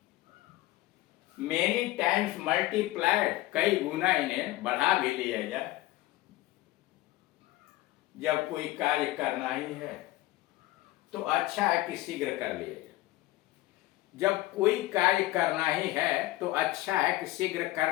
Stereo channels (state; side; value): quieter; right; 17.5 dB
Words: many times multiplied, कई गुना इन्हें बढ़ा भी लिया जाए। जब कोई कार्य करना ही है तो अच्छा है कि शीघ्र कर लिया जाए। जब कोई कार्य करना ही है तो अच्छा है कि शीघ्र